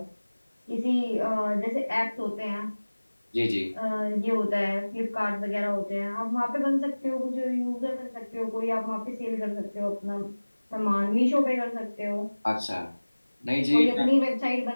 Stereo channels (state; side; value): inverted; both; correlation -1.00